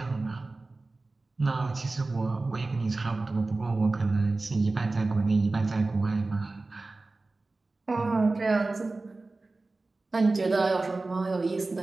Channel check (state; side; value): quieter; left; 3.4 dB